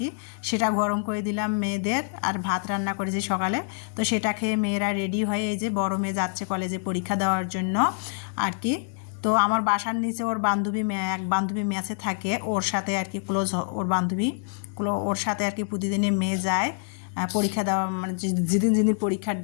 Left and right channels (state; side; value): silent; right; digital silence